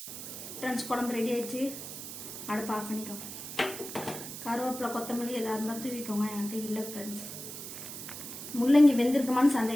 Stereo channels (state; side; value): noise; right; hiss, 9 dB below the sound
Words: ஃப்ரெண்ட்ஸ், குழம்பு ரெடி ஆயிடுச்சு. அடுப்பு ஆஃப் பண்ணிக்கோங்க. கருவேப்பிலை, கொத்தமல்லி எதாக இருந்தால் தூவிக்கோங்க. என்கிட்ட இல்லை ஃப்ரெண்ட்ஸ். முள்ளங்கி வெந்திருக்குமான்னு